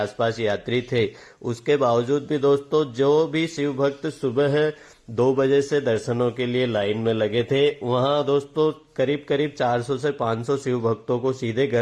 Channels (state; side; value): identical; both; correlation 1.00